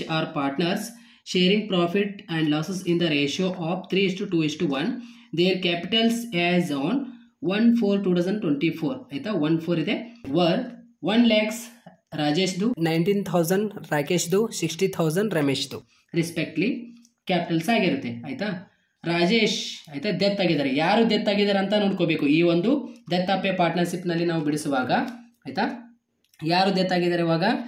R partners sharing profit and losses in the ratio of 3:2:1. Their capitals as on 1/4/2024 ಆಯ್ತಾ 1/4 ಇದೆ. ವರ್ 1 lakhs ರಾಜೇಶ್ದು, 19,000 ರಾಕೇಶ್ದು, 60,000 ರಮೇಶ್ದು ರೆಸ್ಪೆಕ್ಟ್ಲಿ ಕ್ಯಾಪಿಟಲ್ಸ್ ಆಗಿರುತ್ತೆ ಆಯ್ತಾ. ರಾಜೇಶ್ ಆಯ್ತಾ ಡೆತ್ ಆಗಿದ್ದಾರೆ. ಯಾರು ಡೆತ್ ಆಗಿದ್ದಾರೆ ಅಂತ ನೋಡ್ಕೋಬೇಕು. ಈ ಒಂದು ಡೆತ್ ಆಫ್ ಎ ಪಾರ್ಟ್ನರ್ಶಿಪ್ ನಲ್ಲಿ ನಾವು ಬಿಡಿಸುವಾಗ ಆಯ್ತಾ ಯಾರು ಡೆತ್ ಆಗಿದ್ದಾರೆ ಇವಾಗ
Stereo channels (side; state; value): both; identical; correlation 1.00